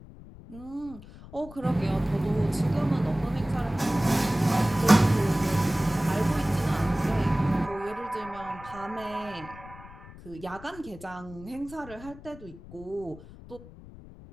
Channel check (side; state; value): left; noise; rumble, 18 dB below the sound